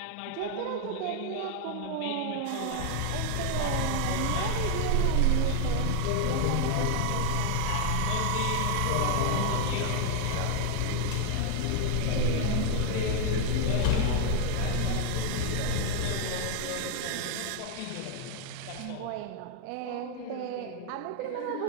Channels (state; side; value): different; both; correlation 0.00